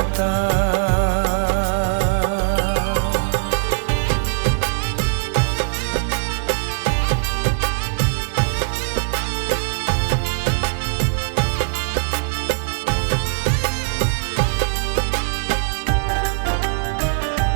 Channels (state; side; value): silent; left; digital silence